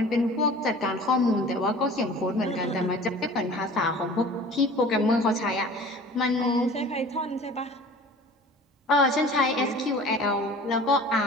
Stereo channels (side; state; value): both; normal; correlation 0.43